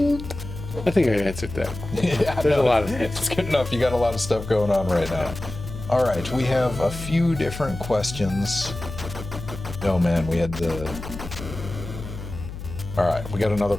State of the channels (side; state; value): left; noise; hum, 10 dB below the sound